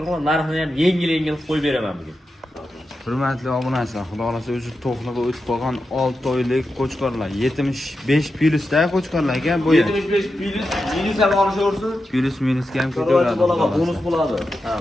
narxini ham yengil qo'yib beraman bugun. Hurmatli obunachilar, xudo xolasa o'zi to'qliga o'tib qolgan 6 oylik qo'chqorlar, 75 plyusda qo'chqorlar ekan bu. 75 plyus, minus ham olishaversin. Plyus minusga ham Chorvachi ketaveradi. bolaga bonus bo'ladi. Ha.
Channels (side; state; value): both; normal; correlation 0.89